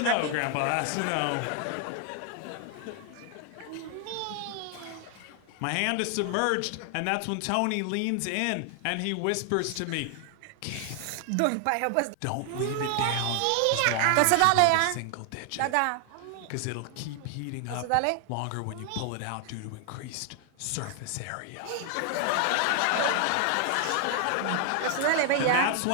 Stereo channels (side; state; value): both; different; correlation 0.00